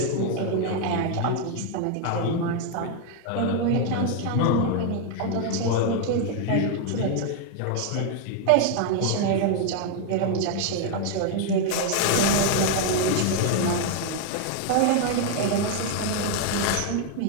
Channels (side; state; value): both; different; correlation 0.00